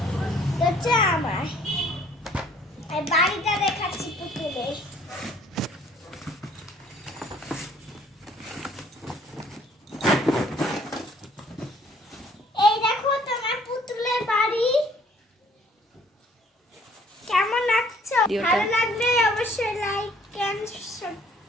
এটা হচ্ছে আমার। আর বাড়িটা দেখাচ্ছি পুতুলের। এই দেখো তোমার পুতুলের বাড়ি। কেমন লাগছে? ভিডিওটা। ভালো লাগলে অবশ্যই লাইক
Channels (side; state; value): both; normal; correlation 0.59